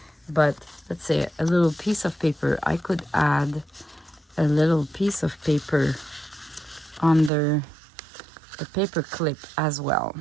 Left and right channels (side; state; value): left; drops out; at 7.3 s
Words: but let's say a little piece of paper. I could add a little piece of paper under the paper clip as well.